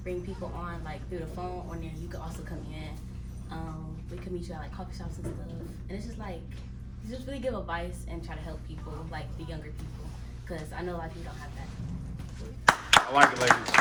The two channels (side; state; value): both; identical; correlation 1.00